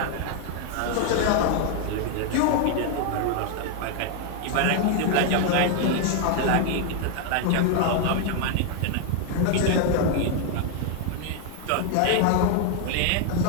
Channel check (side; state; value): both; different; correlation 0.00